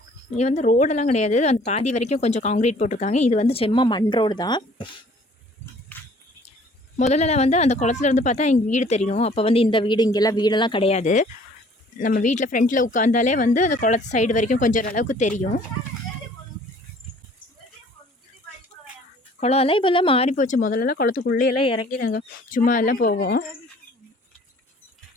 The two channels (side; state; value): both; normal; correlation 0.54